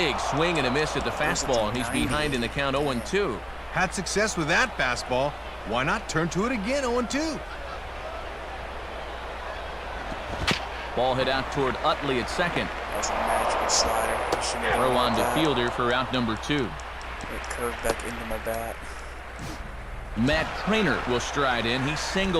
swing and a miss at the fastball, and he's behind in the count 0-2. Had success with that fastball. Why not turn to it again 0-2? Ball hit out toward Utley at second. That was a magical slider. Throw on to Fielder for out number 2. It curved back into my bat. Matt Trainer will stride in. He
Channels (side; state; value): both; identical; correlation 1.00